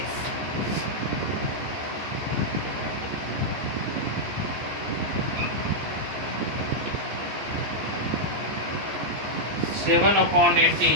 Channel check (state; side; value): late; left; 14 ms